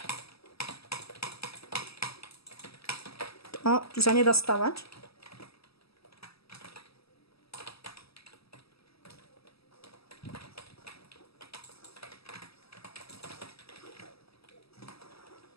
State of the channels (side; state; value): right; late; 0.77 ms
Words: Tu sa nedá stavať.